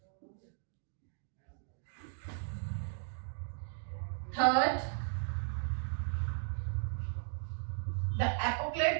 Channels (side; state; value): left; silent; 53 dB below the other